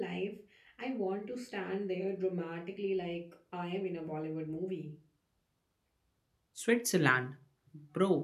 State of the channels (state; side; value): identical; both; correlation 1.00